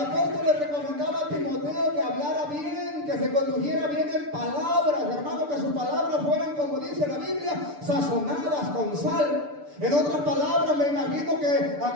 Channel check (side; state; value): left; late; 6.8 ms